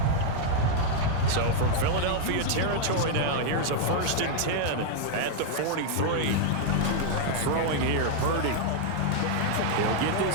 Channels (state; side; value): different; both; correlation 0.00